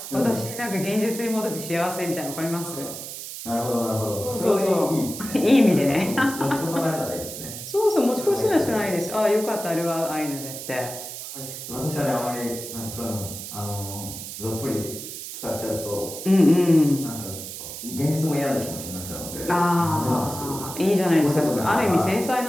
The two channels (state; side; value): noise; right; hiss, 9 dB below the sound